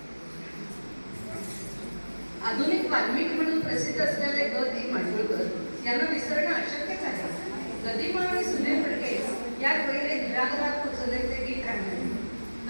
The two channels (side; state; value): both; inverted; correlation -1.00